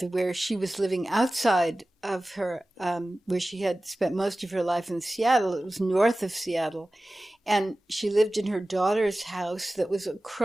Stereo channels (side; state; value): both; normal; correlation 0.96